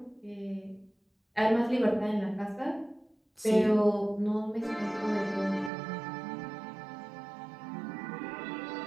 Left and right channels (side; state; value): left; drops out; at 5.7 s